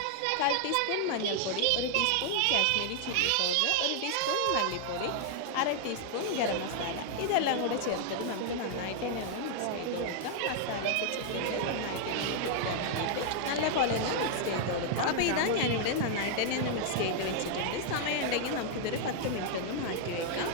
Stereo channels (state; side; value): different; both; correlation 0.00